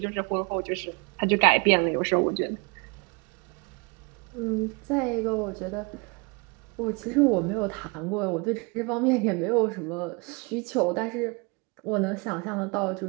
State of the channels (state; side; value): quieter; left; 29.7 dB